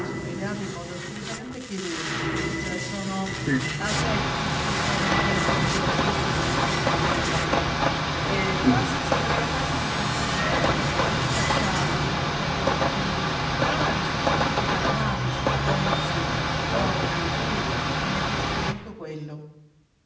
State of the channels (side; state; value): both; identical; correlation 1.00